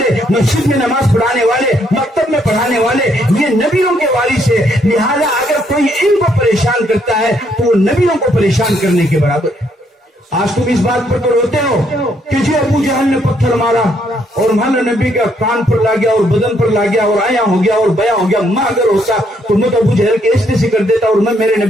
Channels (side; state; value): both; normal; correlation 0.71